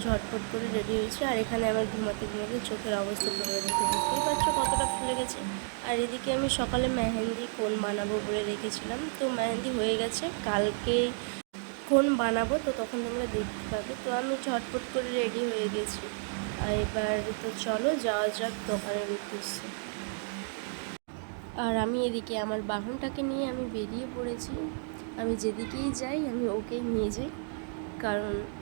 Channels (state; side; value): silent; left; 57 dB below the other